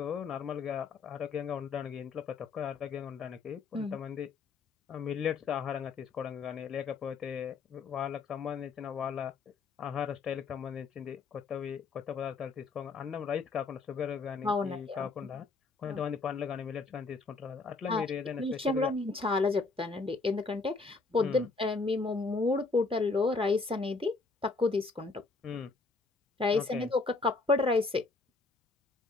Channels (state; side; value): quieter; right; 4.1 dB